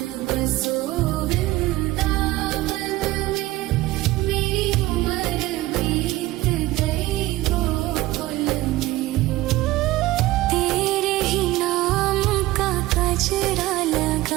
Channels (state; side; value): quieter; left; 17.5 dB